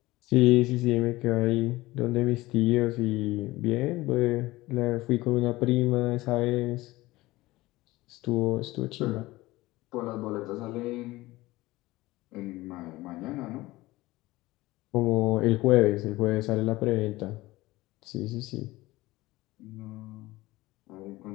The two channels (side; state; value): right; quieter; 19.1 dB